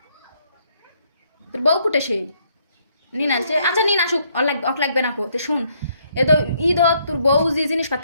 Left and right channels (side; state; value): both; inverted; correlation -0.70